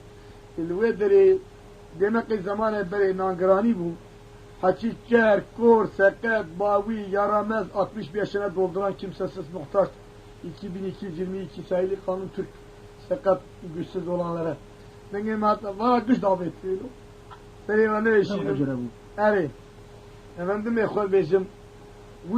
الويدري دمقي زمان بري نانگراني بو حكي كر كور سكت باوي يارامز 65 yaşına dolduran kimsesiz muhtaç 2222 sayılı kanun Türk sakat güçsüz olanlara benim hatta var güç davet ediyor benim ne işim evet efendim ekol bizim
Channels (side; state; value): both; identical; correlation 1.00